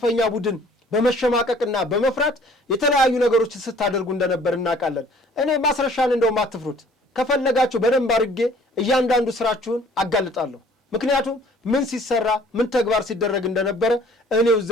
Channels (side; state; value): both; normal; correlation 0.54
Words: ቡድን በመሸማቀቅና በመፍራት የተለያዩ ነገሮች ስታደርጉ እንደነበር እናውቃለን። እኔ ማስረሻን እንደውም አትፍሩት፣ ከፈለጋችሁ በደንብ አድርጌ እያንዳንዱ ስራችሁን አጋልጣለሁ። ምክንያቱም ምን ሲሰራ ምን ተግባር ሲደረግ እንደነበረ እኔው